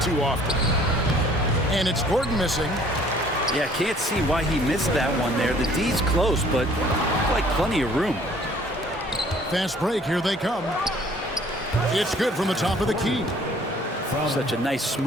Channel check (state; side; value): normal; both; correlation 0.56